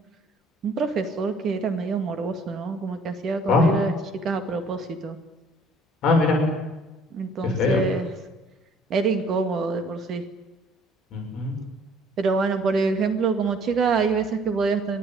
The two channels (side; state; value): both; normal; correlation 0.57